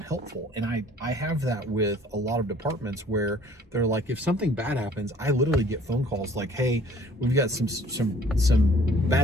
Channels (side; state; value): both; normal; correlation 0.55